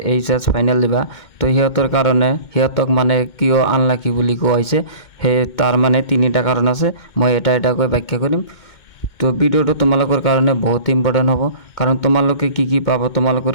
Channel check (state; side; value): late; right; 2.2 ms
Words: এইচএছ ফাইনেল দিবা, তো সিহঁতৰ কাৰণে সিহঁতক মানে কিয় আনলাকি বুলি কোৱা হৈছে, সেই তাৰ মানে তিনিটা কাৰণ আছে। মই এটা এটাকৈ ব্যাখ্যা কৰিম। তো ভিডিঅ'টো তোমালোকৰ কাৰণে বহুত ইম্পৰ্টেণ্ট হ'ব, কাৰণ তোমালোকে কি পাবা, তোমালোকৰ